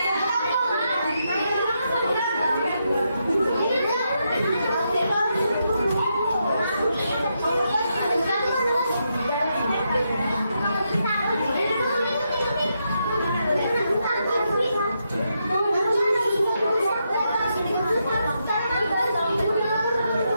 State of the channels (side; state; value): both; inverted; correlation -0.82